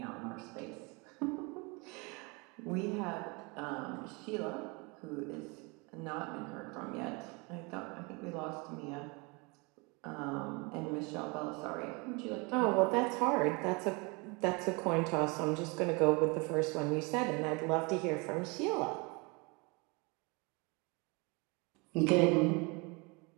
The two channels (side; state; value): left; quieter; 28.8 dB